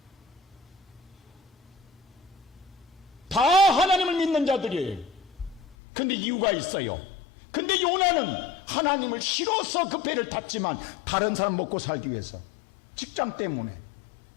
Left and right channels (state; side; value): drops out; right; at 5.8 s